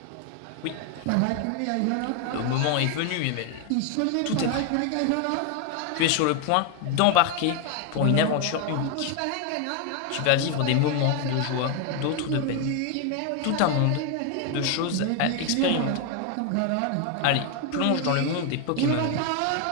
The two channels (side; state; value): both; different; correlation 0.01